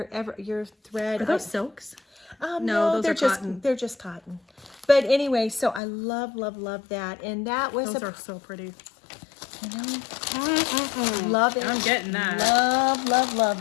thread. Are those silks? No, those they're are just cotton. they're just cotton. But anyway, so I love that, and that was Those are so pretty. you know, love it. I'm getting that.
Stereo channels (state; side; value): drops out; right; at 5.8 s